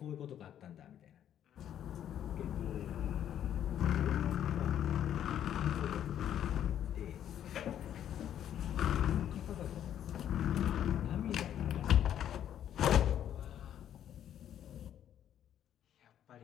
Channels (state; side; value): quieter; right; 10.4 dB